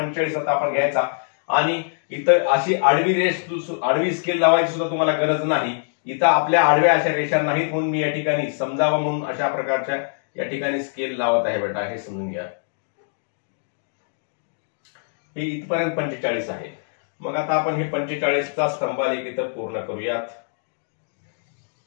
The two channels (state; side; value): silent; right; digital silence